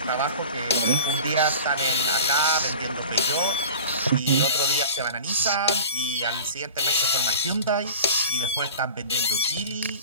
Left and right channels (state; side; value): inverted; both; correlation -0.39